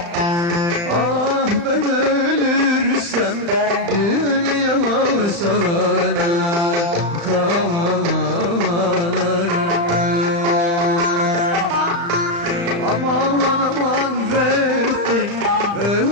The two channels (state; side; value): late; left; 35 ms